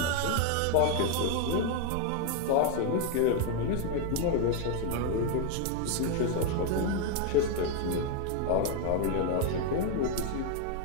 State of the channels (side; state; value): both; different; correlation 0.01